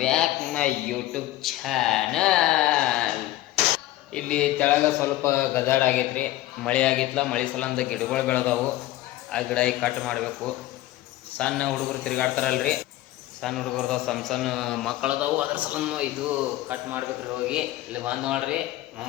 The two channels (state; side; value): quieter; right; 15.6 dB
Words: back my YouTube channel. ಇಲ್ಲಿ ತೆಳಗ ಸ್ವಲ್ಪ ಗದಾಡ ಆಗೈತ್ರಿ, ಮಳೆ ಆಗಿತ್ಲ. ಮಳೆ ಸಲಂದ ಗಿಡಗಳು ಬೆಳೆದವು. ಆ ಗಿಡ ಈಗ ಕಟ್ ಮಾಡಬೇಕು. ಸಣ್ಣ ಹುಡುಗರು ತಿರುಗಾಡ್ತಾರಲ್ರಿ, ಸಣ್ಣ ಹುಡುಗರ್ದಾವ, ಸಣ್ಣ ಸಣ್ಣ ಮಕ್ಕಳದಾವು. ಅದ್ರ ಸಲಂದ ಇದು ಕಟ್ ಮಾಡ್ಬೇಕ್ರಿ. ಹೋಗಿ ಇಲ್ಲಿ ಬಂದು ನೋಡ್ರಿ.